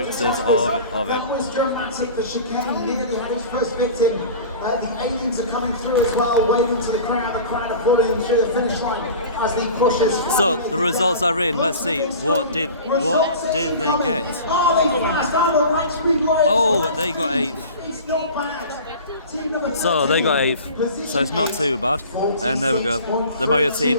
of it. That was dramatic. The chicane nearly had his first victim. The aliens are coming through as well, waving to the crowd. The crowd are falling through the finish line as he pushes. So the results are in. Let's see. What did they get? Oh, they got 8th. It's not bad. So they got 8th, so it's not too bad. And there we go. The Mario team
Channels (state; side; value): inverted; both; correlation -0.39